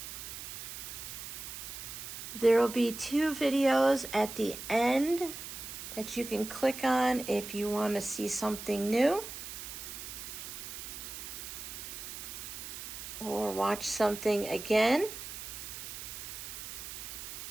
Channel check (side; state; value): right; noise; hiss, 9 dB below the sound